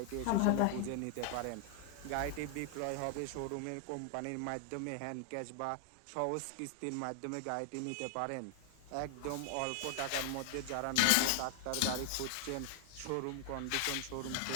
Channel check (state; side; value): different; both; correlation 0.00